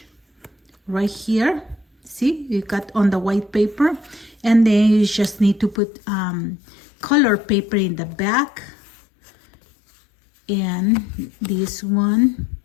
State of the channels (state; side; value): drops out; right; at 5.8 s